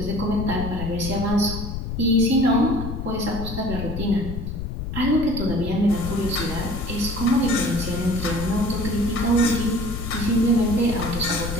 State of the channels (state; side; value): noise; left; rumble, 6 dB below the sound